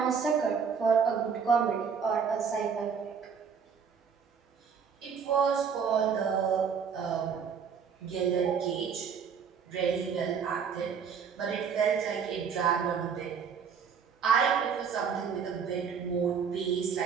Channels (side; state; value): left; quieter; 6.6 dB